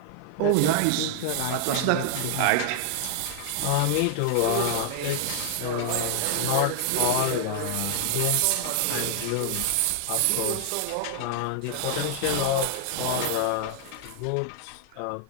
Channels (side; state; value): both; different; correlation 0.00